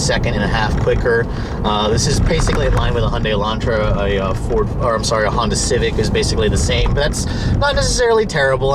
quicker. This is basically in line with a Hyundai Elantra. A Honda Civic is basically the same, but that's not necessarily terrible.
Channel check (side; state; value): both; identical; correlation 1.00